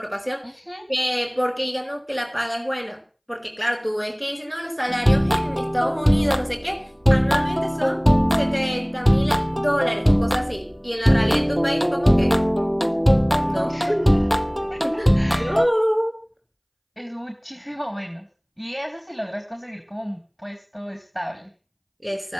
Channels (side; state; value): both; identical; correlation 1.00